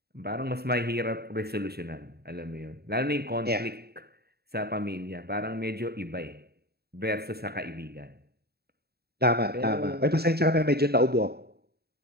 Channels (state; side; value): late; left; 0.46 ms